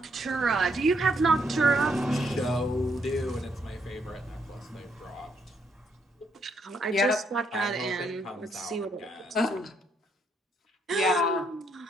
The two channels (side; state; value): both; normal; correlation 0.74